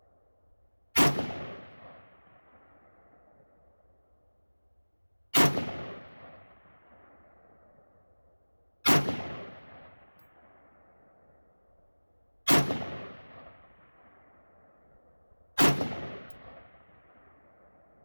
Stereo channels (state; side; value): inverted; both; correlation -1.00